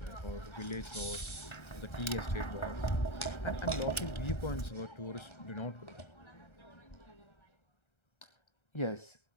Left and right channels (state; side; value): late; right; 1.3 ms